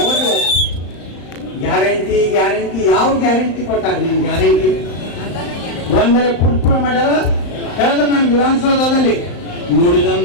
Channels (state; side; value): late; right; 35 ms